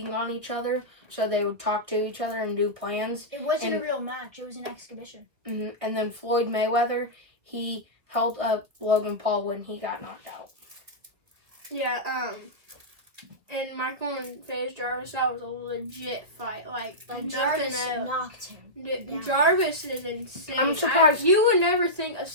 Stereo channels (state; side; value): late; left; 1.9 ms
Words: on each other, so they would talk to each other and do plans. It wasn't And- a real match. It was an exhibition. And then Floyd Mayweather, he held up Logan Paul when he got knocked out. Yeah, and Michael and FaZe Jarvis, that was a legit fight. Like nothing Jarvis else. knocked him. down. Jarvis is insane. I'm surprised- You would never think a